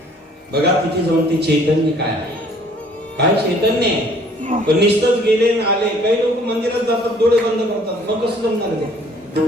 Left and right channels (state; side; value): normal; both; correlation 0.58